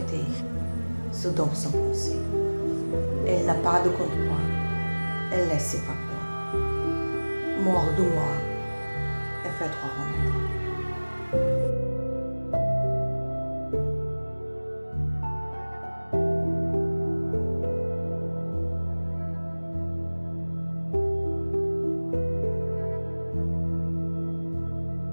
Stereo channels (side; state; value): both; inverted; correlation -1.00